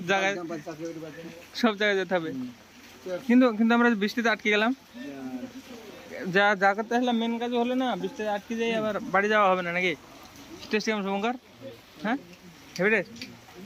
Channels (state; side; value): identical; both; correlation 1.00